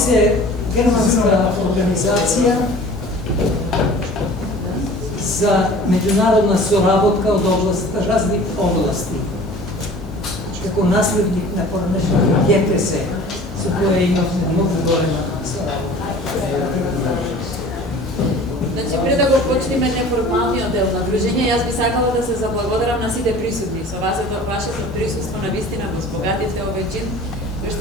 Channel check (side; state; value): both; normal; correlation 0.44